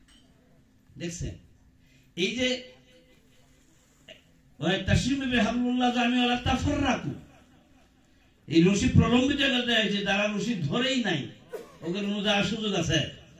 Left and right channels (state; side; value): identical; both; correlation 1.00